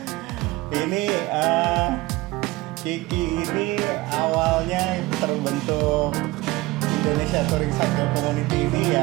Ini Kiki ini awalnya terbentuk Indonesia Touring Cycle Community ini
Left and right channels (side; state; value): left; quieter; 20.5 dB